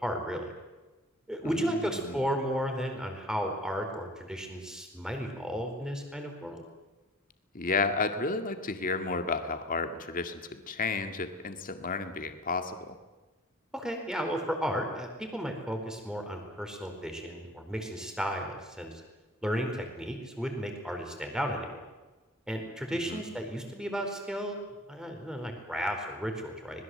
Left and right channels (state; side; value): normal; both; correlation 0.44